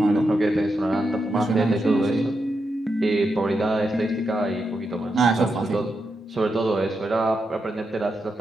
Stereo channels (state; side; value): normal; both; correlation 0.85